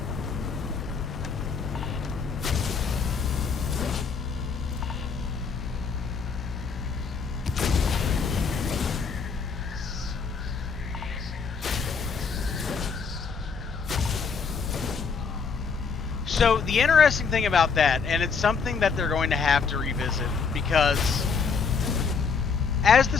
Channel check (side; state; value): right; quieter; 5.5 dB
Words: So the interesting thing about that, and it's something that they're going to have to revisit, because as the